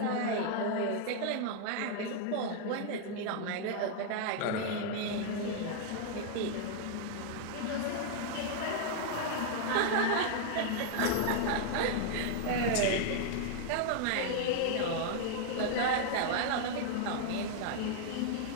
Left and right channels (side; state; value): both; different; correlation 0.00